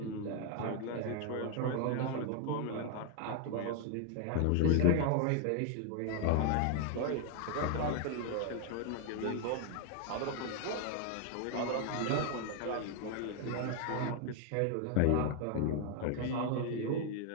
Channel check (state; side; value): different; both; correlation 0.00